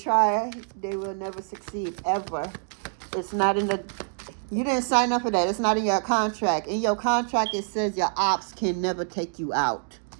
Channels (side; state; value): left; silent; 61 dB below the other